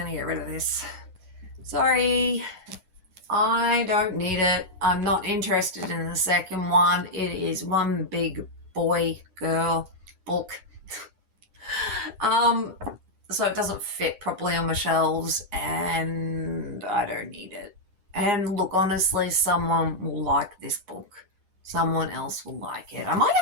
to get rid of this. Sorry. I don't need it. I'm not interested in the second one. It is one big boy girl book. Um, so it doesn't fit properly on my shelves and I don't need it. And look, honestly, someone will like this book. Someone else will like it. I might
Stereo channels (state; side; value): late; left; 9.8 ms